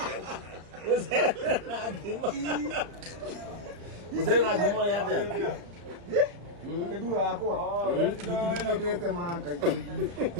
Na gima. Musoro na gima ya te. Kedua ako. Dite manga.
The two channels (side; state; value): left; late; 34 ms